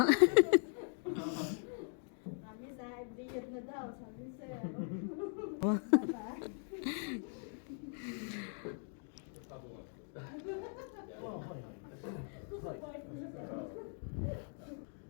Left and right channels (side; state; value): right; silent; 51 dB below the other